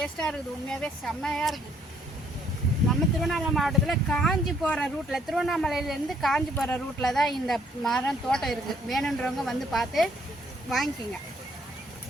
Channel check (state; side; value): normal; both; correlation 0.66